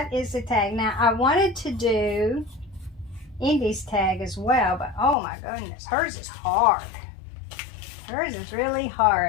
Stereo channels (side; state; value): right; drops out; at 5.2 s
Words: is the tag. Now I wanted to do Indy's tag as well, but oh my goodness, hers is hard. Hers is really